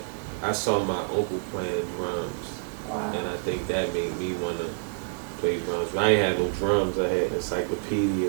I saw my uncle playing drums, and I think that made me want to play drums. But I ain't had no drums. I had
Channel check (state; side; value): silent; left; 60 dB below the other